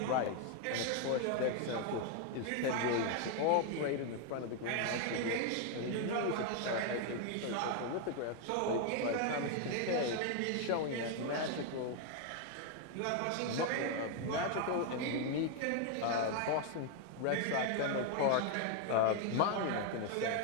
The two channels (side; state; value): both; different; correlation 0.01